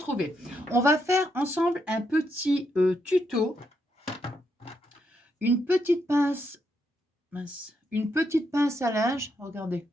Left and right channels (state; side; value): normal; both; correlation 0.79